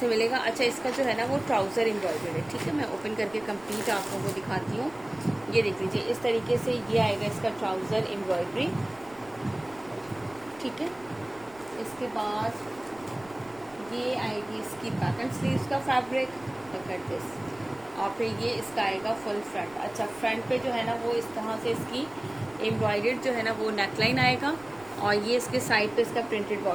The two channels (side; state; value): right; noise; rumble, 26 dB below the sound